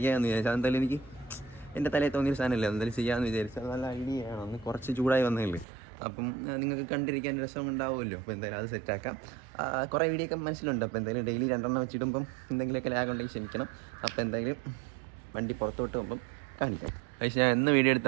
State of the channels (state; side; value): drops out; left; at 5.7 s